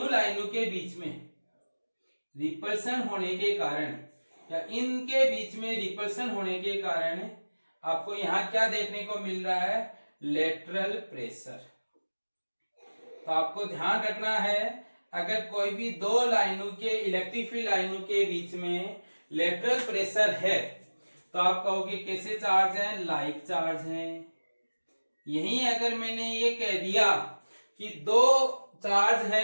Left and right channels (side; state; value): both; inverted; correlation -1.00